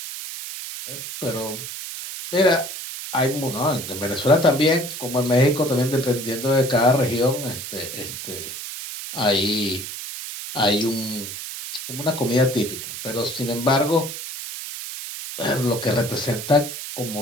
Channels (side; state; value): right; noise; hiss, 8 dB below the sound